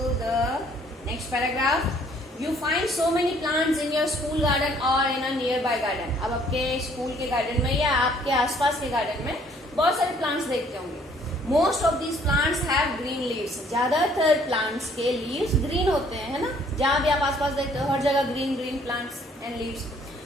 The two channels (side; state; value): both; normal; correlation 0.61